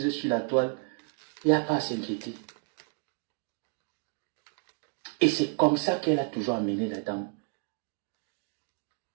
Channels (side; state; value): left; quieter; 39.7 dB